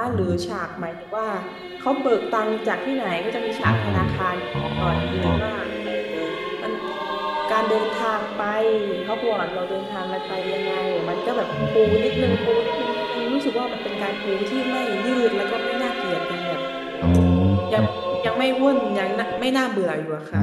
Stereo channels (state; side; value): identical; both; correlation 1.00